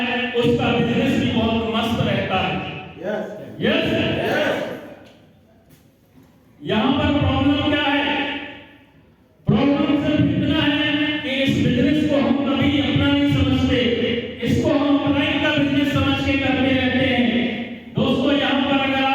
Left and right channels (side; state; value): both; identical; correlation 1.00